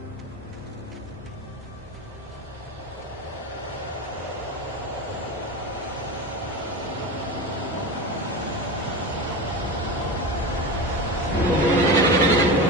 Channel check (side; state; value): both; normal; correlation 0.24